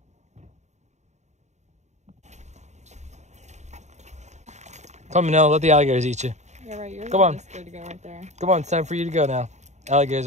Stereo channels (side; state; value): left; late; 0.34 ms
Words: Come on, Manila, let the alligators eat you. Yeah, right. You're Come on. good to go right there. Come on, it's time for you to go now. Alligators